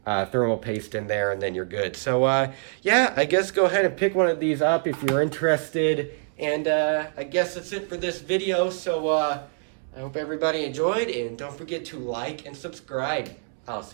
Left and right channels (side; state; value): left; silent; digital silence